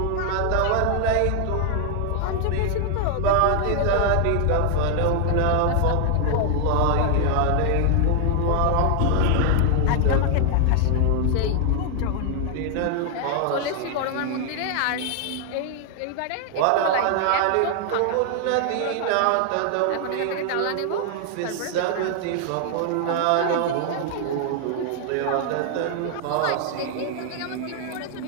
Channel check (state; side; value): different; both; correlation 0.00